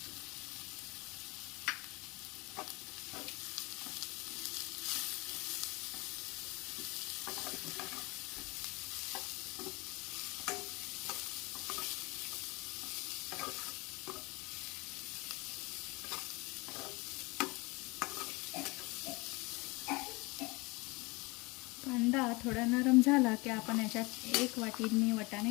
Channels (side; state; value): right; quieter; 25.3 dB